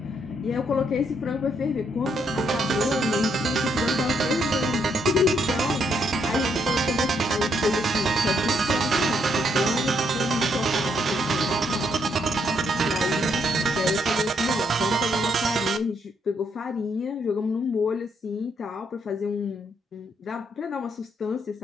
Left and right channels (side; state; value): both; normal; correlation 0.74